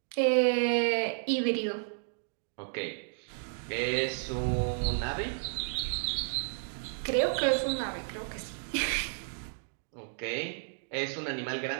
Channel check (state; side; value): silent; left; digital silence